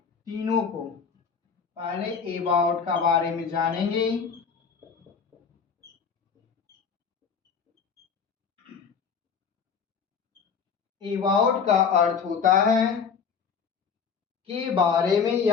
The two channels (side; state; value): right; quieter; 6.3 dB